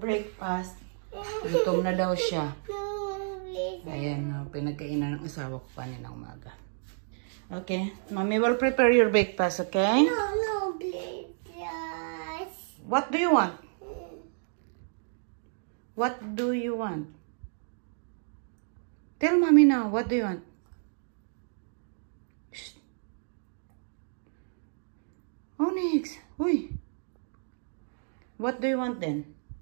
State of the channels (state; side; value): silent; left; digital silence